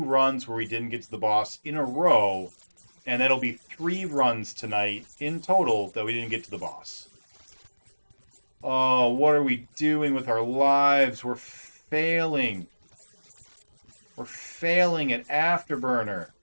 where we didn't get to the boss in a row, and that'll be 3 runs tonight in total that we didn't get to the boss. Oh, what are we doing with our lives? We're failing. We're failing at Afterburner.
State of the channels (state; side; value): inverted; both; correlation -1.00